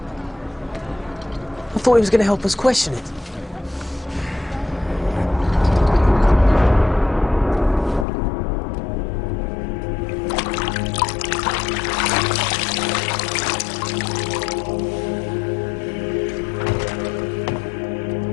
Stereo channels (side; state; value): right; drops out; at 8.1 s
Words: I thought he was going to help us question it.